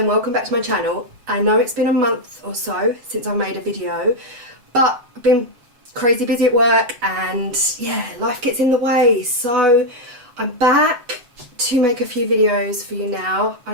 welcome back to my channel. I know it's been a month or so since I made a video, but I've been crazy busy at work and yeah, life gets in the way. So I'm back to make a few videos for you now.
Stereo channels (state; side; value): late; left; 8.1 ms